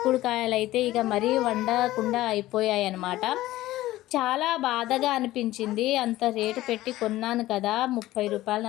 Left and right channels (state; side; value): quieter; right; 16.1 dB